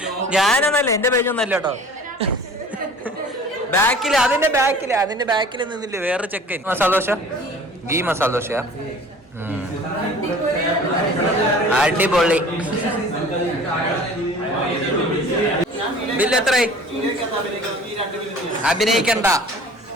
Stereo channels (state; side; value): normal; both; correlation 0.45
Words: ഞാനൊന്നല്ല, എന്റെ പേജൊന്നല്ല കേട്ടോ. അതിന്റെ ബാക്കിൽ നിന്നില്ലേ വേറെ ചെക്കൻ. മസാല ദോശ, ഗീ മസാല ദോശ അടിപൊളി. ബില്ല് എത്രയായി? അഭിനയിക്കണ്ട,